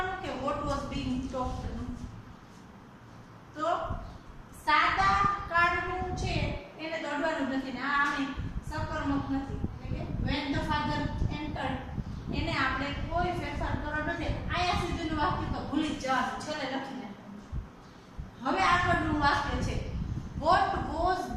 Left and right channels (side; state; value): both; identical; correlation 1.00